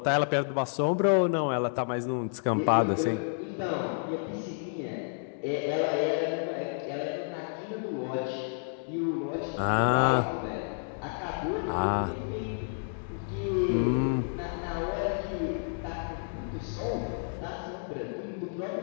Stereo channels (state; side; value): silent; right; digital silence